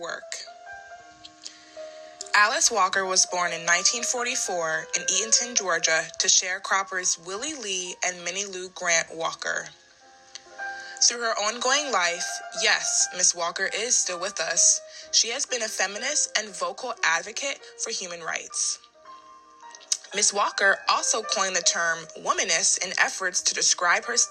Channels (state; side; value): identical; both; correlation 1.00